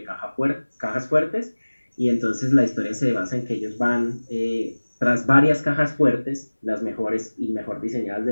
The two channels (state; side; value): inverted; both; correlation -1.00